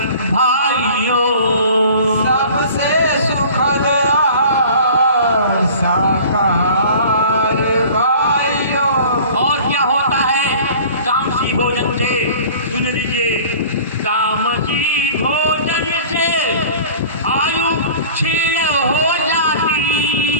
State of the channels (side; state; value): both; inverted; correlation -0.44